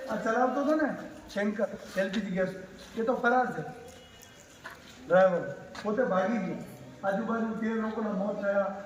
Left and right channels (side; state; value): both; identical; correlation 1.00